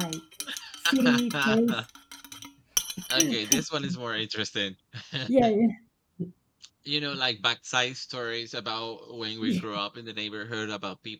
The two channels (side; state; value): both; identical; correlation 1.00